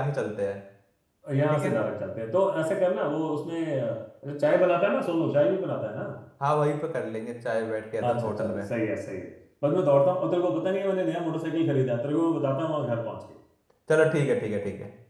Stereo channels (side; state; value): both; identical; correlation 1.00